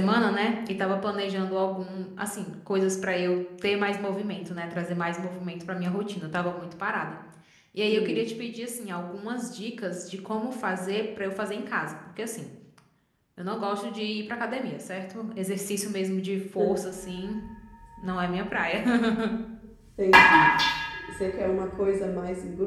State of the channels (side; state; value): both; identical; correlation 1.00